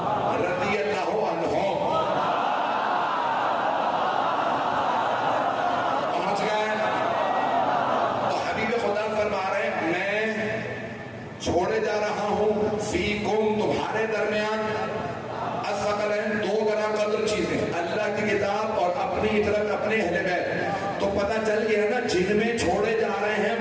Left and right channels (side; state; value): both; identical; correlation 1.00